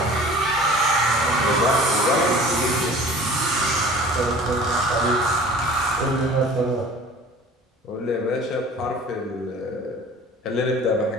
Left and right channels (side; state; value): both; normal; correlation 0.45